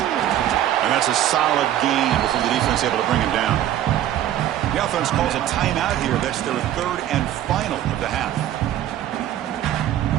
that's a solid gain before the defense able to bring him down. The offense calls a timeout here. That's their third and final of the half.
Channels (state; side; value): quieter; left; 11.9 dB